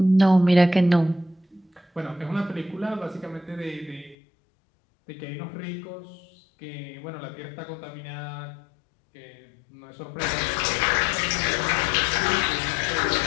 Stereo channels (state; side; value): drops out; right; at 4.2 s